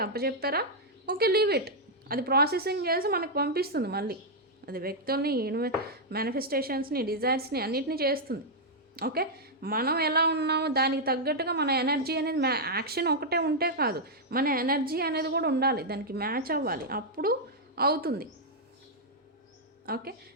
అప్పచెప్పారా, ఓకే, లీవ్ ఇట్. అది ప్రాసెసింగ్ చేసి మనకు పంపిస్తుంది మళ్ళీ. అది వ్యక్తుల్ని, మేనిఫెస్టేషన్స్ని, డిజైర్స్ని అన్నిటినీ చేస్తుంది. ఓకే, మనం ఎలా ఉన్నామో దానికి తగ్గట్టుగా మన ఎనర్జీ అనేది యాక్షన్ ఒకటే ఉంటే కాదు, మన ఎనర్జీ అనేది కూడా ఉండాలి, దానికి మ్యాచ్ అవ్వాలి, అప్పుడు అవుతుంది. ఓకే,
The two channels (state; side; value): normal; both; correlation -0.04